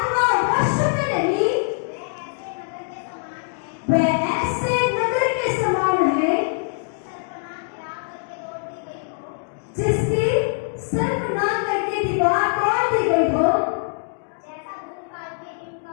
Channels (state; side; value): silent; right; digital silence